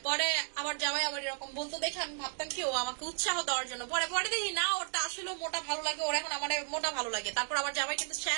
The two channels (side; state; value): left; silent; 55 dB below the other